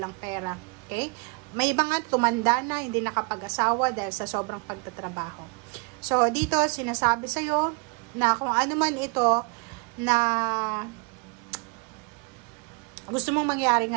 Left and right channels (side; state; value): left; quieter; 31.3 dB